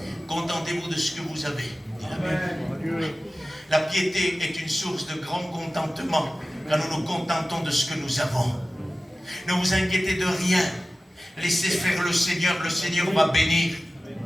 Contentez-vous de ce que vous avez, dit la Bible. La piété est une source de grand contentement quand nous nous contentons de ce que nous avons. Ne vous inquiétez de rien. Laissez faire le Seigneur va bénir.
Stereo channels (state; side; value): normal; both; correlation 0.96